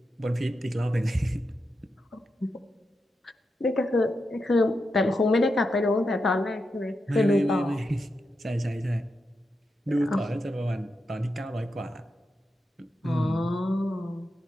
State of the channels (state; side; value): normal; both; correlation 0.87